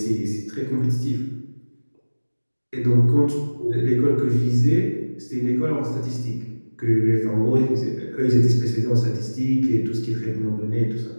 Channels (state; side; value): inverted; both; correlation -1.00